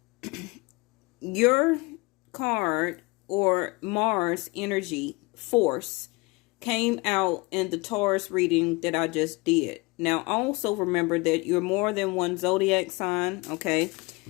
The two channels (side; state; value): right; quieter; 25.8 dB